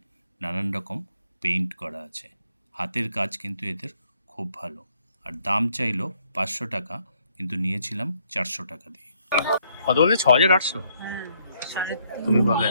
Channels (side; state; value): both; inverted; correlation -0.70